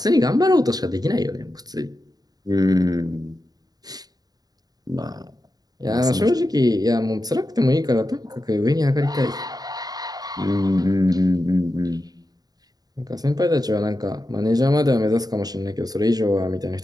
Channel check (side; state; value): left; late; 0.19 ms